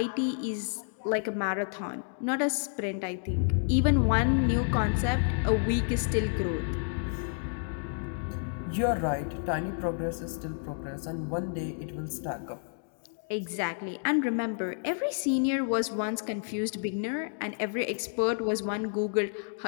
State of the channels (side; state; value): right; silent; digital silence